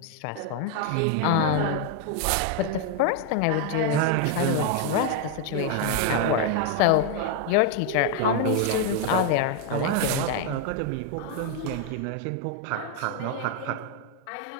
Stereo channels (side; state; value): both; different; correlation 0.00